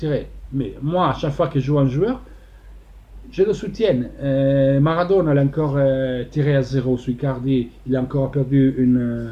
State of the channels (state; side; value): identical; both; correlation 1.00